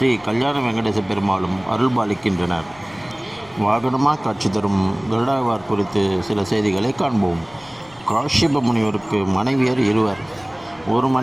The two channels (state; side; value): noise; left; rumble, 26 dB below the sound